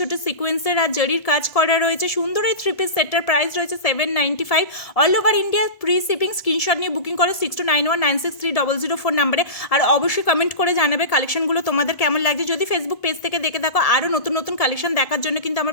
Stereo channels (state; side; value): late; right; 1.7 ms